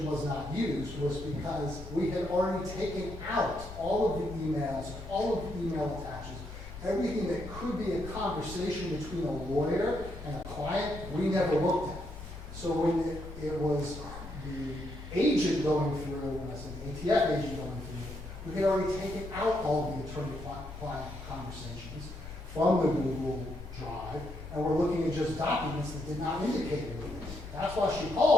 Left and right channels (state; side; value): normal; both; correlation 0.77